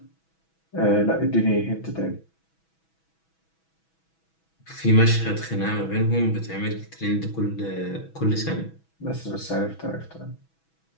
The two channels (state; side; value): late; right; 6.2 ms